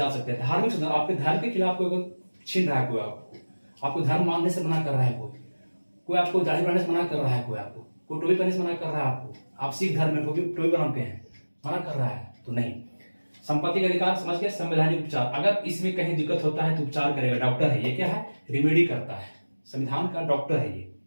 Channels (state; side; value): inverted; both; correlation -1.00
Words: सकते हैं। धार्मिक शोषण, आपके धर्म के खिलाफ कोई छीन रहा है, कोई आपको धर्म मानने से मना कर रहा है, कोई आपको दाढ़ी बनाने से मना कर रहा है, कोई टोपी पहनने से मना कर रहा है, आपको आप सिख धर्म में टोपी बनाते हैं, मना कर रहा है, तो नहीं। संपत्ति का अधिकार समझ के संवैधानिक उपचार, अगर इसमें कहीं दिक्कत होता है तो उपचार करेगा, डॉक्टर है ये, क्या है? रिमेडी करता है, संविधान का डॉक्टर है ये।